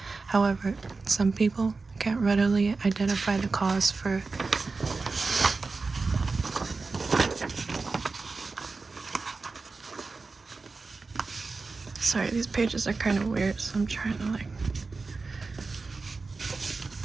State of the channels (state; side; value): quieter; left; 4.1 dB